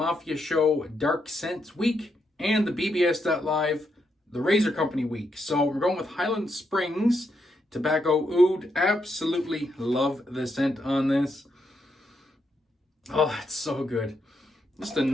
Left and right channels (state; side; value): normal; both; correlation 0.80